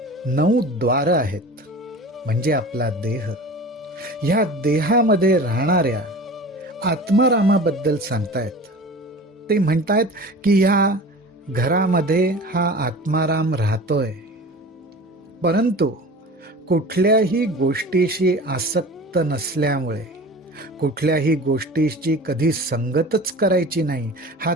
9 द्वार आहेत, म्हणजे आपला देह, ह्या देहामध्ये राहणाऱ्या आत्मारामाबद्दल सांगतायत. ते म्हणतायत की ह्या घरामध्ये हा आत्माराम राहतोय, परंतु कुठल्याही गोष्टीशी आसक्त नसल्यामुळे, कुठल्याही गोष्टीची कधी संगतच करायची नाही हा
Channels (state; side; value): normal; both; correlation 0.38